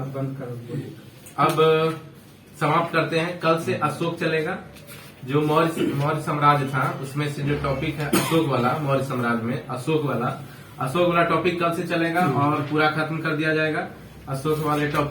बंद करो। अब समाप्त करते हैं। कल से अशोक चलेगा। जो मौर्य साम्राज्य था उसमें से जो टॉपिक है अशोक वाला, मौर्य साम्राज्य में अशोक वाला टॉपिक कल से चलेगा और पूरा खत्म कर दिया जाएगा अशोक वाले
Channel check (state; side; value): identical; both; correlation 1.00